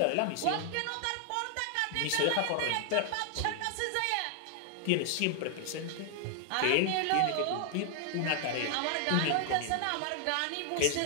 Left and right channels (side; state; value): both; different; correlation 0.00